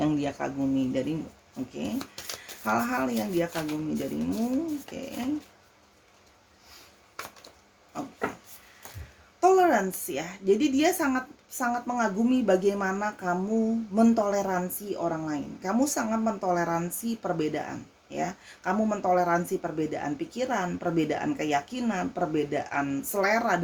dia kagumi darimu. Oke, hal-hal yang dia kagumi darimu. Oke. Toleransi ya. Jadi dia sangat mengagumi bagaimana kamu mentoleransi orang lain. Kamu sangat mentoleransi perbedaan ya. Kamu mentoleransi perbedaan pikiran, perbedaan keyakinan, perbedaan selera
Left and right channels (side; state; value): both; identical; correlation 1.00